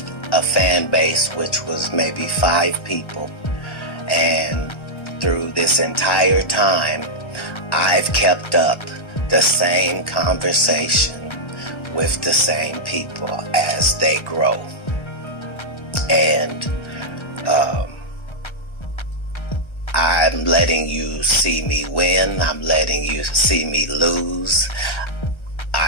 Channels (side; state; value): right; late; 1.3 ms